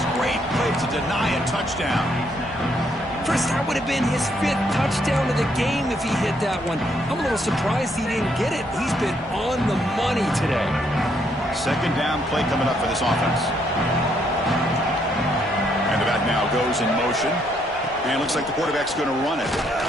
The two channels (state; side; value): noise; right; rumble, 23 dB below the sound